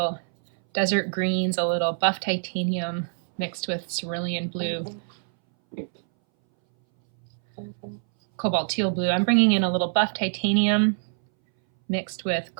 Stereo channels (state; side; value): silent; left; 61 dB below the other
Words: desert greens, a little buff titanium mixed with cerulean blue, cobalt teal blue. I'm bringing in a little buff titanium mixed with